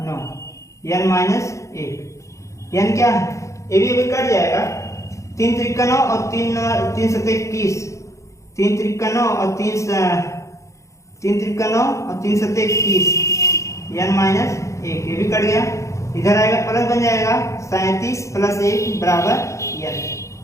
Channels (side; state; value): right; late; 0.15 ms